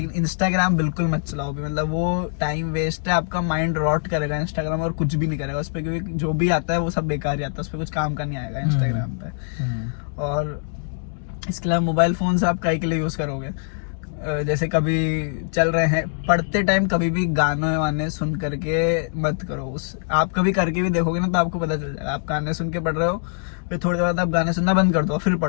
इंस्टाग्राम बिल्कुल मत चलाओ भी, मतलब वो टाइम वेस्ट है, आपका माइंड रॉट करेगा इंस्टाग्राम, और कुछ भी नहीं करेगा उस पर, क्योंकि जो भी आता है वो सब बेकार ही आता है, उस पर कुछ काम का नहीं आएगा इंस्टाग्राम पे। और इसके अलावा मोबाइल फोन से आप कई के लिए यूज करोगे, जैसे कभी चल रहे हैं पढ़ते टाइम कभी भी गाने वाने सुन करके मत करो। आप कभी करके भी देखोगे ना तो आपको पता चल जाएगा, आप गाने सुन के पढ़ रहे हो, फिर थोड़ी देर बाद आप गाने सुनना बंद कर दो फिर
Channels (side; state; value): right; silent; digital silence